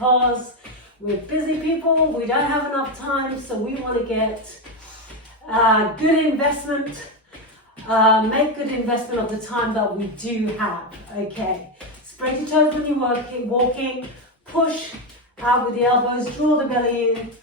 we're busy people, we don't have enough time, so we want to get good investment, make good investment of the time that we do have. Okay, spread your toes when you're walking, push out with the elbows, draw the belly in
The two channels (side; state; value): both; normal; correlation 0.10